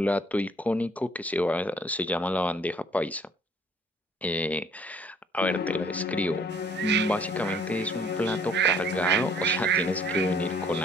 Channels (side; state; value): both; normal; correlation 0.60